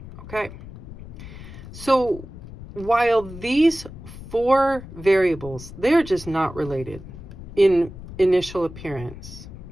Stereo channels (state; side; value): noise; left; rumble, 14 dB below the sound